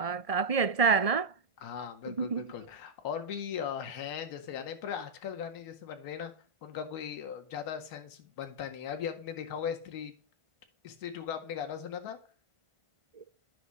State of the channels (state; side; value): late; left; 1.7 ms